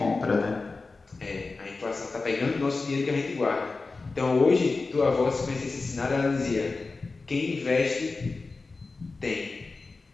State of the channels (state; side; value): quieter; right; 3.9 dB